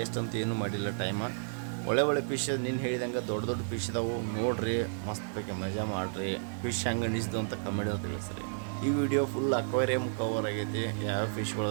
ಅಂತ ಏನೂ ಮಾಡಿಲ್ಲ ಟೈಮ. ಒಳ್ಳೆ ಫಿಶ್ ನೀನು ಹೇಳಿದಂಗೆ ದೊಡ್ಡ ಫಿಶ್ ಇದಾವೆ ನೋಡ್ರಿ, ಮಸ್ತ್ ಬೇಕೆ ಮಜಾ ಮಾಡಿರಿ. ಫಿಶ್ ಹೆಂಗೆ ಅನಿಸಿದ್ದು ಅಂತ ಕಮೆಂಟ್ ತಿಳಿಸ್ರಿ. ಈ ವಿಡಿಯೋ ಫುಲ್ ಅಕ್ವೇರಿಯಮ್ ಕವರ್ ಆಗೈತಿ, ಯಾವ ಫಿಶ್ಗಳು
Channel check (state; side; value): silent; left; digital silence